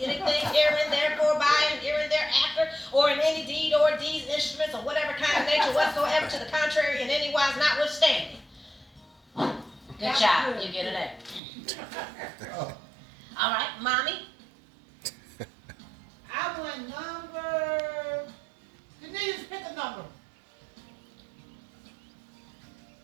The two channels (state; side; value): drops out; left; at 11.4 s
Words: anything herein, therefore, by, and herein, thereafter, or in any deed or deeds, instruments, or whatever kind of nature whatsoever to the contrary, in any wise notwithstanding. Good job. You get an A. All right, Mommy. I want number. You need to pick a number.